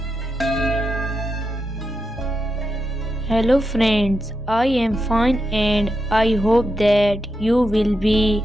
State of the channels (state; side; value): normal; both; correlation 0.86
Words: friends, I am fine and I hope that you will be